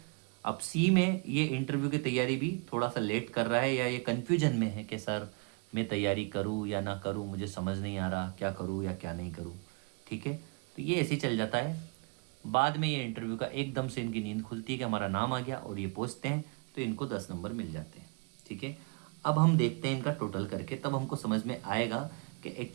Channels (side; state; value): left; quieter; 31.9 dB